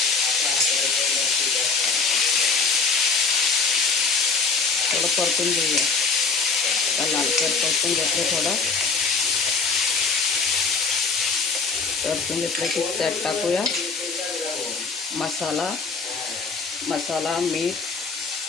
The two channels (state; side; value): quieter; right; 4.8 dB